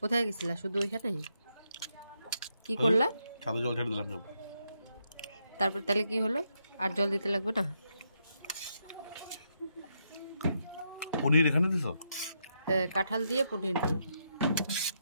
গেছিলা? শুধু ওইখানেই? কি করলা? ছাদে জল ছেড়ে দিলাম সব। তারপর তাহলে কি হলো? আর জল দিতে লাগবে না? পনির এখানে দিছ? হ্যাঁ, কাঁঠাল দিয়ে পনির দিয়ে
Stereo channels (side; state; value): both; inverted; correlation -0.80